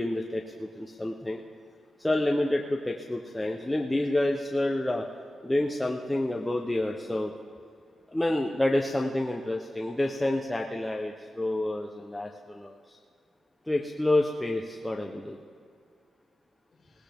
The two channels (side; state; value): both; normal; correlation 0.97